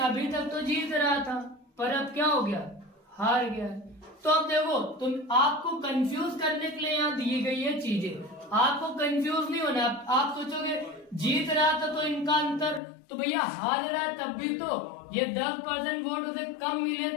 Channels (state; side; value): drops out; right; at 12.8 s